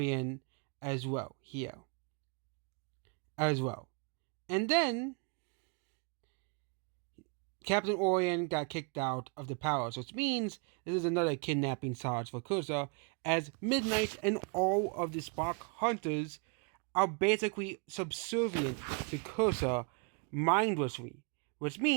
as well here. As well. And then Captain Orient got kicked out of the palace, which means this is another kidnapping charge for Cursa, as Midnight and all of the Spark Hunters are basically subservient to Cursa mindlessly, which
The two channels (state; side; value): quieter; left; 35.9 dB